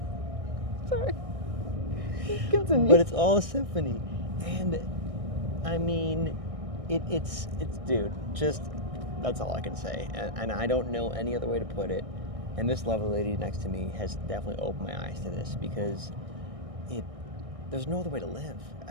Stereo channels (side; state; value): left; late; 1.6 ms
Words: Sorry. Continue. But it's all a symphony. And I mean, it's dude, just, that's all I can say. And I don't know any other way to put it. And this lovely lady next to me has definitely opened my eyes to this, because there's no other way to live.